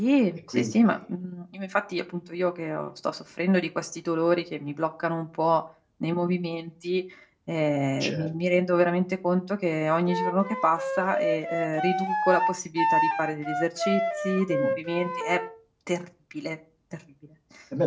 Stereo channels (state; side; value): identical; both; correlation 1.00